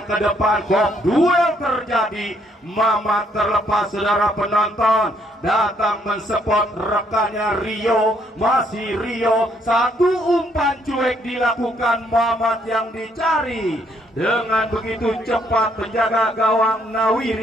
ke depan, kok duel terjadi. Mamat terlepas, saudara penonton, datang mensupport rekannya Rio. Masih Rio, satu umpan cuek dilakukan Mamat yang dicari. Dengan begitu cepat penjaga gawang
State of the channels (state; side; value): normal; both; correlation 0.70